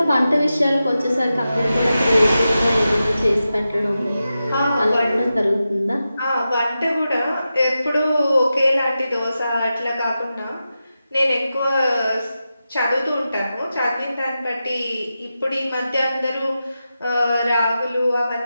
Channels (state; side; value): inverted; both; correlation -0.91